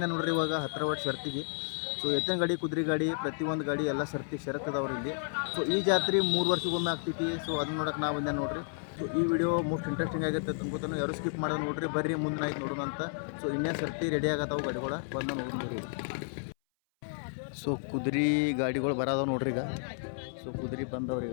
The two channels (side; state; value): right; silent; 57 dB below the other